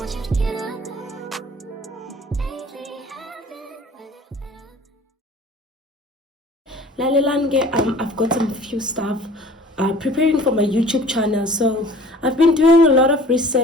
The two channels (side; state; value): both; normal; correlation 0.48